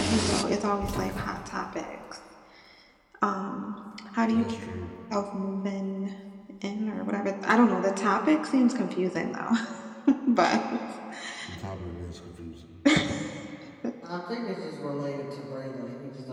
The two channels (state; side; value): identical; both; correlation 1.00